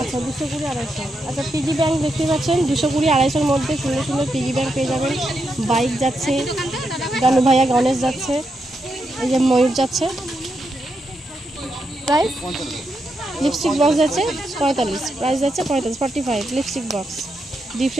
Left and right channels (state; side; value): normal; both; correlation 0.83